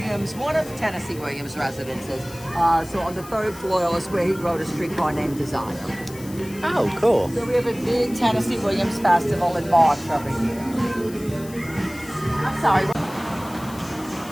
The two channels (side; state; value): left; noise; hiss, 18 dB below the sound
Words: one of Tennessee Williams' residences. So on the 3rd floor is where he wrote A Streetcar Named Desire. Oh, cool. So we have a big Tennessee Williams festival in March every year. I'm sorry.